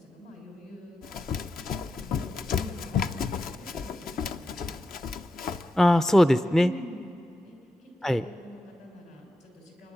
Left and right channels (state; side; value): normal; both; correlation 0.89